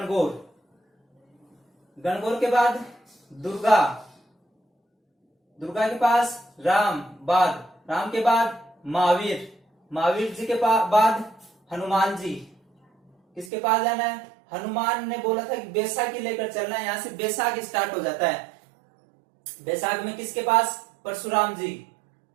गणगौर के बाद दुर्गा, दुर्गा के पास राम, बाद राम के बाद महावीर, महावीर जी के बाद हनुमान जी। किसके पास जाना है? हनुमान ने बोला था कि बैसाखी लेकर चलना है। यहां से बैसाख स्टार्ट हो जाता है। बैसाख में किसके पास? परशुराम जी।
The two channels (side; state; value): left; drops out; at 13.5 s